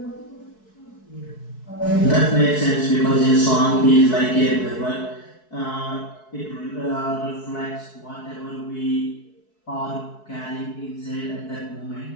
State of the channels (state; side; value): late; right; 4.6 ms